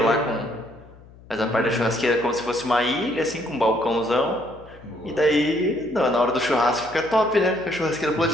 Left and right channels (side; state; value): left; noise; hum, 22 dB below the sound